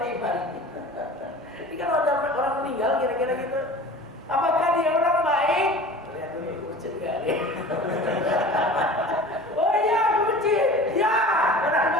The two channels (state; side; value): normal; both; correlation 0.39